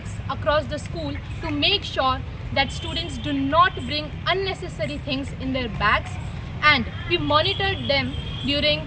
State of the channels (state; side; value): identical; both; correlation 1.00